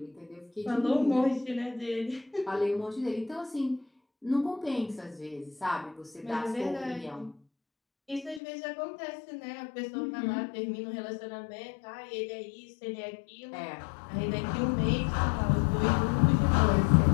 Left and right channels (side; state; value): right; drops out; at 8.4 s